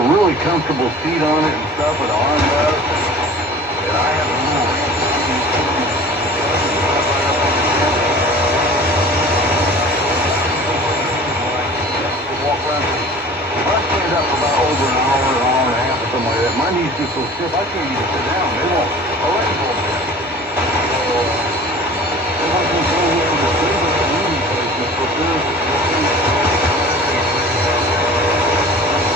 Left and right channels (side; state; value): both; normal; correlation 0.43